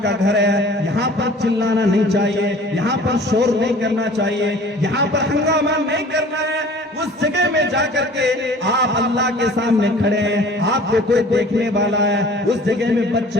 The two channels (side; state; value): both; normal; correlation 0.47